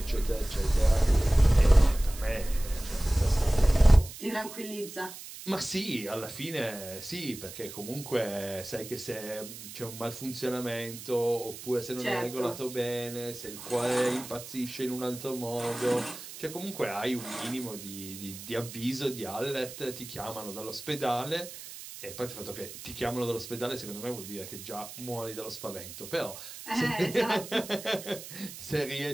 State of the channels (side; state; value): right; noise; hiss, 13 dB below the sound